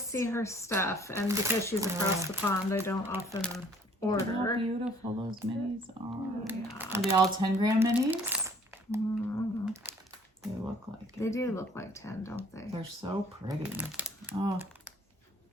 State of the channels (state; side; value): normal; both; correlation 0.57